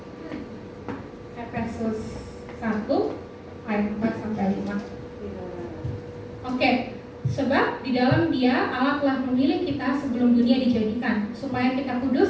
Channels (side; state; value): both; identical; correlation 1.00